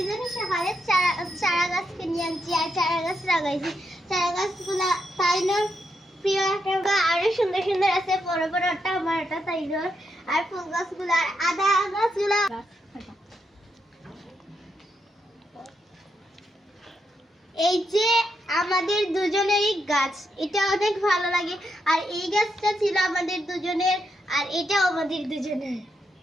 সকালে চারা গাছ কিনে আনছি আর চারা গাছ লাগাইছি। চারা গাছগুলা তাইনোর প্রিয় একটা, আরো সুন্দর সুন্দর আছে, বড় বড় একটা আমার একটা তাইনোর। আর ফুল গাছগুলা আর আদা গাছগুলা এই যে আমাদের দুজনেরই গাছ, এটা অনেক ভালো লাগে। আর এই গাছটা ছিল আমাদের দুজনের, আর এটাও আমাদের দুজনের।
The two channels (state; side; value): normal; both; correlation 0.82